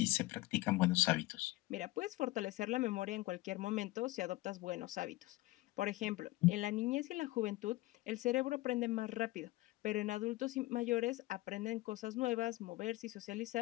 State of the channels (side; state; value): right; quieter; 19.3 dB